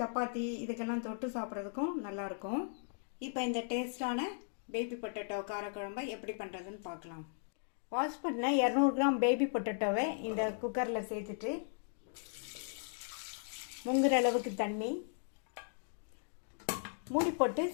சப்பாத்தி இதுக்கெல்லாம் தொட்டு சாப்பிட்றதுக்கும் நல்லா இருக்கும். இப்போ இந்த டேஸ்டான பேபி பொட்டேட்டோ காரக்குழம்பை எப்படி பண்ணுறதுன்னு பார்க்கலாம். வாஷ் பண்ண 200 கிராம் பேபி பொட்டேட்டோவை இந்த குக்கரில் சேர்த்துட்டு முங்குற அளவுக்கு தண்ணி மூடி போட்டு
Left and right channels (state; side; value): silent; right; digital silence